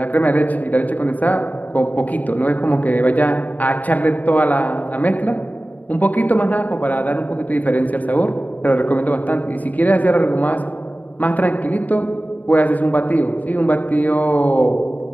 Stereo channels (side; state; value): right; late; 0.077 ms